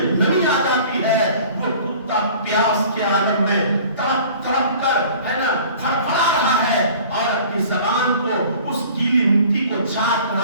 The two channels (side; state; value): both; inverted; correlation -0.47